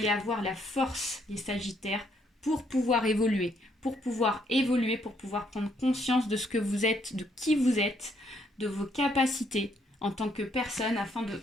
avoir la force, les Sagittaires, pour pouvoir évoluer, pour pouvoir prendre conscience de ce que vous êtes, de qui vous êtes, de vos capacités en tant que personne, afin de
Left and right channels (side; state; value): both; normal; correlation 0.71